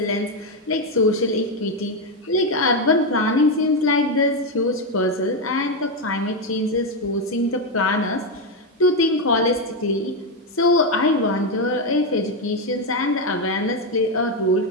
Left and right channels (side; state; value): both; normal; correlation 0.07